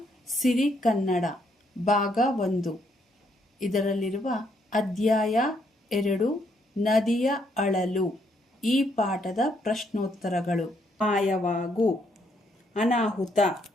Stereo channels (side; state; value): both; normal; correlation 0.72